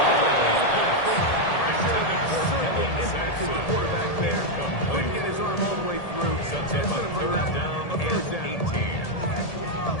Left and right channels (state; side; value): late; right; 1.8 ms